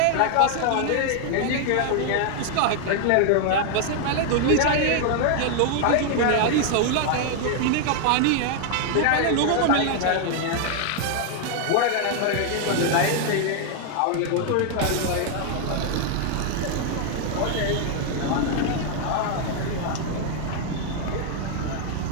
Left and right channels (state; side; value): different; both; correlation 0.00